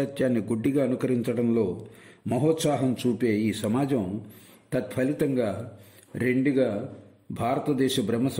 గుడ్డిగా అనుకరించడంలో మహోత్సాహం చూపే ఈ సమాజం తత్ఫలితంగా రెండుగా భారతదేశ బ్రహ్మ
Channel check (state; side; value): identical; both; correlation 1.00